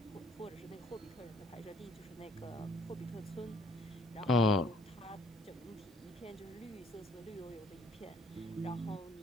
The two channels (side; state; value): both; normal; correlation 0.59